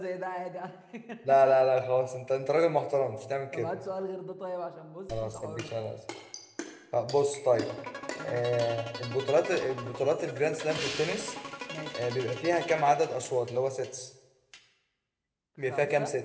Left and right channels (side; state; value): both; identical; correlation 1.00